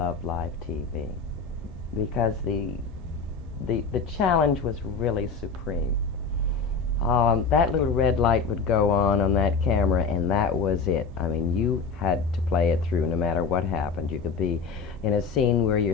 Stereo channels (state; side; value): quieter; right; 4.9 dB